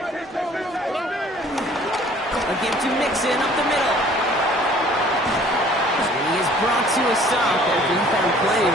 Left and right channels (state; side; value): normal; both; correlation 0.54